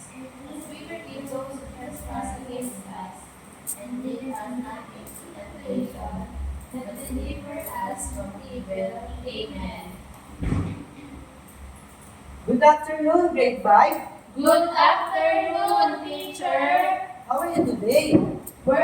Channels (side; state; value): both; identical; correlation 1.00